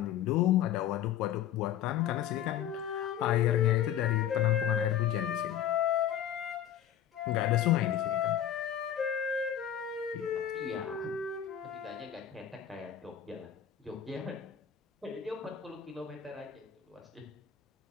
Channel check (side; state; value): right; quieter; 10.3 dB